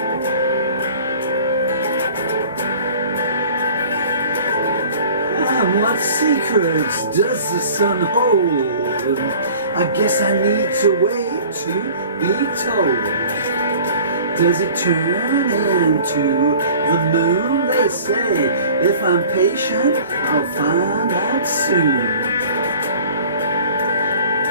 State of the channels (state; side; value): inverted; both; correlation -0.46